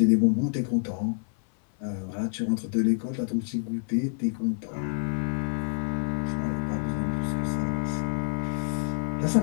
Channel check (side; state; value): right; silent; 58 dB below the other